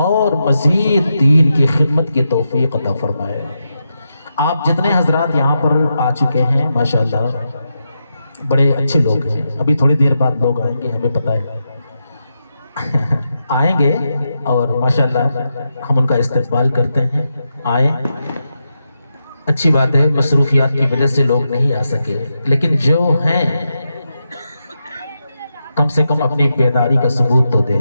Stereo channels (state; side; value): inverted; both; correlation -0.87